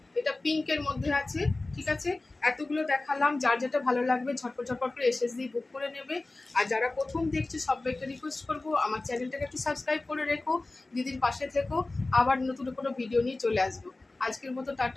এটা পিঙ্কের মধ্যে আছে, ঠিক আছে। এতগুলো দেখালাম, যার যেটা ভালো লাগবে ঝটপট ঝটপট করে এসএসডি বুক করে নেবে। আর যারা প্রথম দেখছে সবাইকে রিকোয়েস্ট করবো আমার চ্যানেলটাকে একটু সাবস্ক্রাইব করে রেখো, দিদির পাশে থেকো। আবার নতুন কোনো ভিডিও নিয়ে চলে আসবো। আজকের মতো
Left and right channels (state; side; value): quieter; right; 3.1 dB